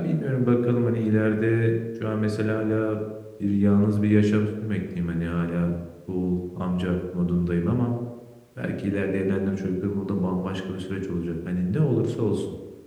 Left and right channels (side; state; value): both; identical; correlation 1.00